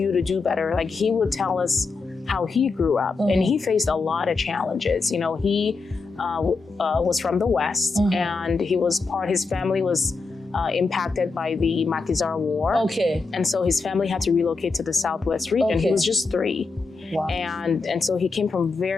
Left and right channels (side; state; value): right; quieter; 4.2 dB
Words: to do better. Like he would tell us how he grew up, and he faced a lot of challenges. You know, he was from the West, and his family was impacted by the Maquisard War. And so his family had to relocate to the Southwest region. He was just 3. And so he came from